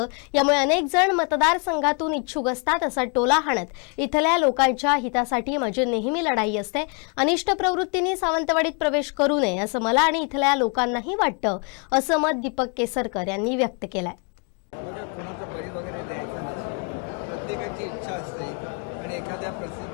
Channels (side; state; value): right; quieter; 36.3 dB